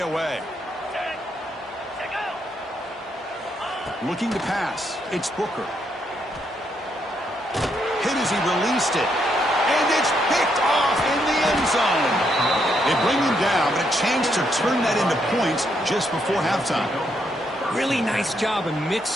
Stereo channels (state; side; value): normal; both; correlation 0.76